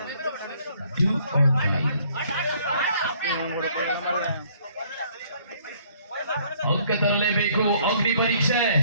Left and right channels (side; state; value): both; inverted; correlation -0.62